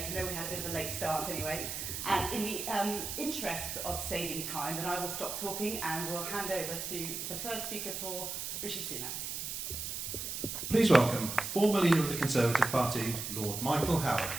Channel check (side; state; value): right; noise; hiss, 5 dB below the sound